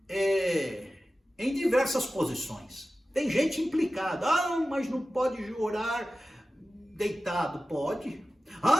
em diversas posições. Tem gente implicada, mas não pode orar deitado, pode.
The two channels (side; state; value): both; normal; correlation 0.94